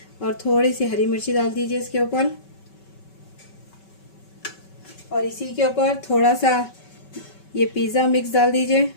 और थोड़ी सी हरी मिर्ची डाल दीजिए इसके ऊपर, और इसी के ऊपर थोड़ा सा ये पिज़्ज़ा मिक्स डाल दीजिए,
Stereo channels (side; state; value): right; late; 5.3 ms